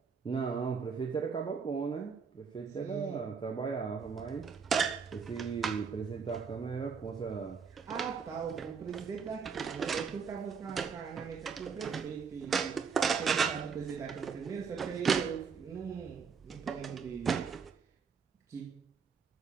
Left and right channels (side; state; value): left; quieter; 5.9 dB